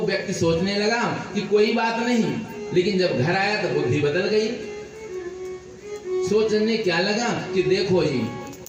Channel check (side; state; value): both; identical; correlation 1.00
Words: व्यक्ति सोचने लगा कि कोई बात नहीं, लेकिन जब घर आया तो बुद्धि बदल गई। सोचने क्या लगा कि देखो जी